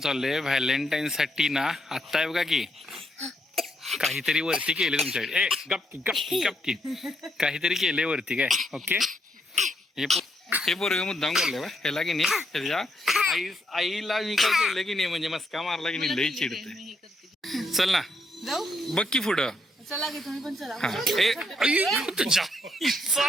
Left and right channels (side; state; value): both; normal; correlation 0.76